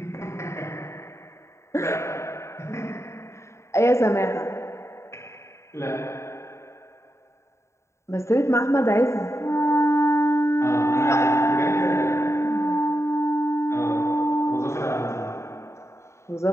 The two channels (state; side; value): late; right; 0.14 ms